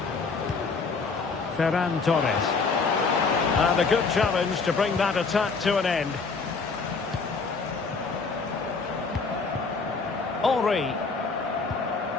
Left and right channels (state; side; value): quieter; right; 4.6 dB